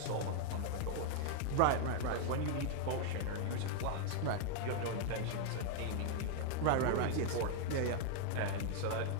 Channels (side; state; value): both; different; correlation 0.00